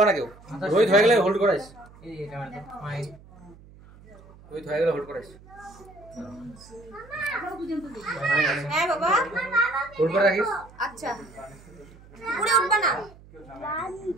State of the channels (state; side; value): noise; right; hum, 22 dB below the sound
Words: না কেউ। রোহিত হয়ে গেলে হোল্ড করাইস, রোহিত হয়ে গেলে হোল্ড করাইস, হ্যাঁ বাবা হোল্ড করে রাখিস। আচ্ছা পুরো উঠবা না।